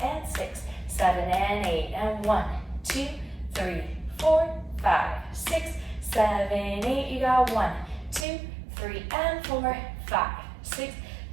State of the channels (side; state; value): left; drops out; at 8.2 s